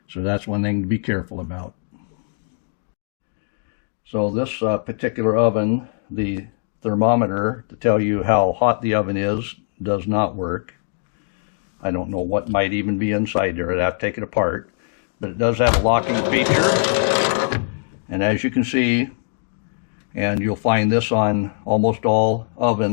So that's one thing to be careful about. So this particular oven, the thermometer to tell you how hot the oven is does not work. I don't know what might even be inside there. I'd have to take it apart. But it does have a locking feature. And as you can see, and you'll find this on almost all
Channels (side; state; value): right; silent; digital silence